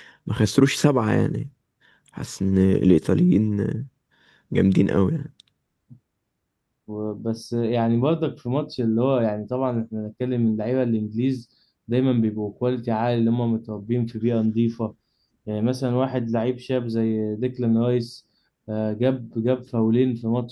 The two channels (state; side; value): identical; both; correlation 1.00